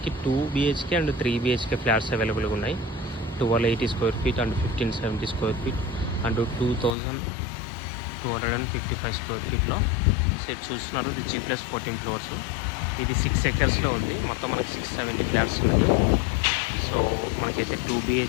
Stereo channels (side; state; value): right; drops out; at 7.0 s